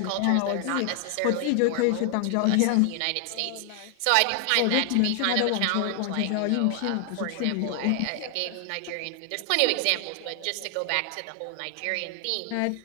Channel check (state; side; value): different; both; correlation 0.00